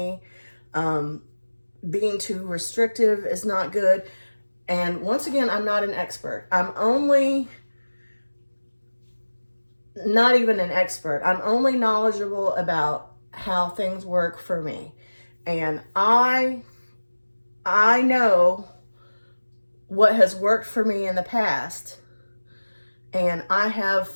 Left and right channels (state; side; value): inverted; both; correlation -1.00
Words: Being too restrictive is not good. And once again, I'm not an expert. I'm only not even an expert. I'm only knowledgeable about how things work for me. And I know what has worked for me in the past. And I have